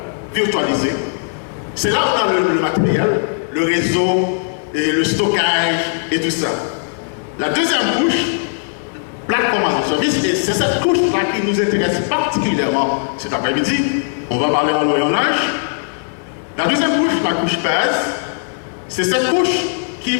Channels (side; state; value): right; silent; 56 dB below the other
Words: virtualisés. C'est là où on a le matériel, le réseau, et le stockage et tout ça. La deuxième couche, plateforme as a service, et c'est cette couche-là qui nous intéresse particulièrement cet après-midi. On va parler en voyage. La deuxième couche, la couche base, c'est cette couche qui